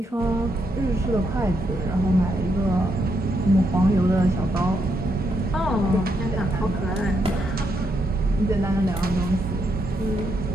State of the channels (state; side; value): normal; both; correlation 0.79